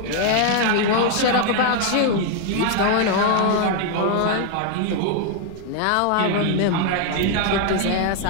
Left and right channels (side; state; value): both; different; correlation 0.00